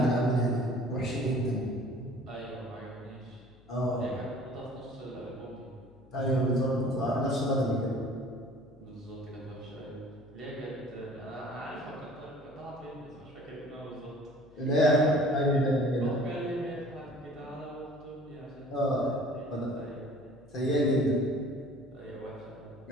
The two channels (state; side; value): noise; left; hum, 25 dB below the sound